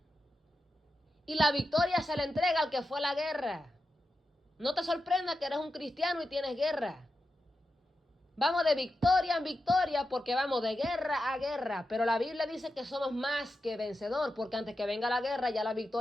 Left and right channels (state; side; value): normal; both; correlation 0.89